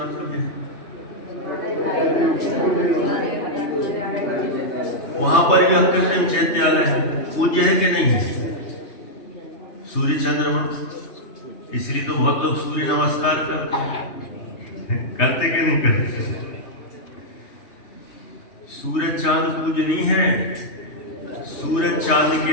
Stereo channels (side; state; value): right; late; 3.2 ms